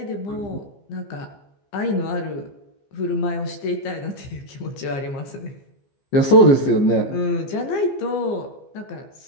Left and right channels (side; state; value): right; late; 15 ms